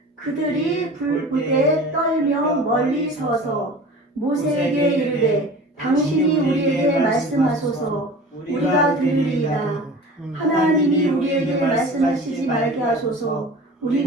그들이 불부대 떨며 멀리 서서 모세에게 이르되 당신이 우리에게 말씀하소서 우리가 들으리이다. 하나님이 우리에게 말씀하시지 말게 하소서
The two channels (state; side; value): normal; both; correlation 0.39